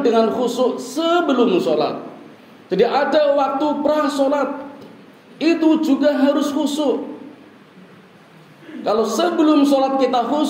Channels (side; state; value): both; identical; correlation 1.00